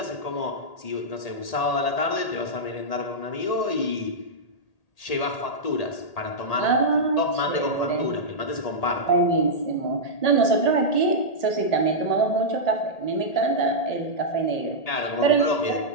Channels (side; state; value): right; late; 1.8 ms